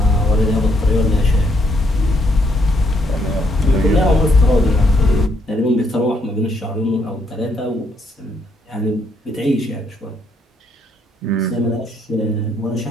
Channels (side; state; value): both; normal; correlation 0.72